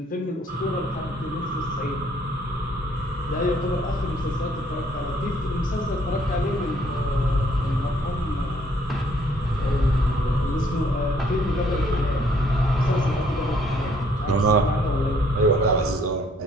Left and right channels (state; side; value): normal; both; correlation 0.64